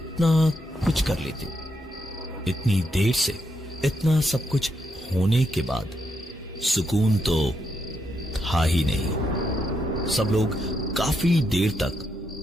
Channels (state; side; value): normal; both; correlation 0.81